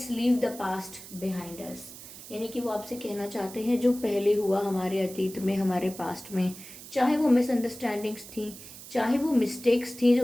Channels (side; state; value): right; noise; hiss, 15 dB below the sound